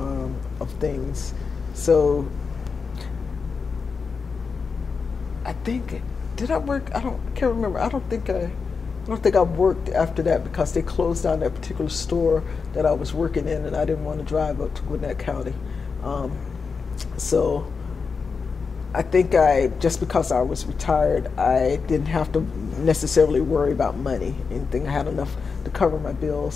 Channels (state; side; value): quieter; right; 5.1 dB